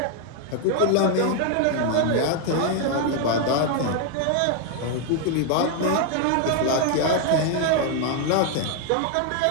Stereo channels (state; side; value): different; both; correlation 0.00